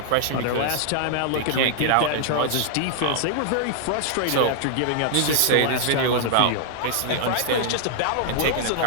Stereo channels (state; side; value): different; both; correlation 0.00